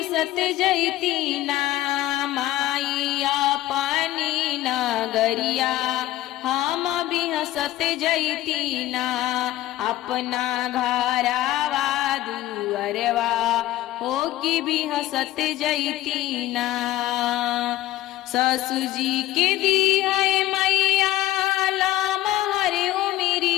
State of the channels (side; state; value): right; quieter; 15.2 dB